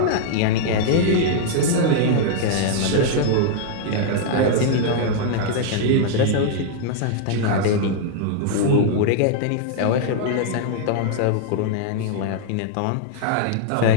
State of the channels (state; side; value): different; both; correlation -0.01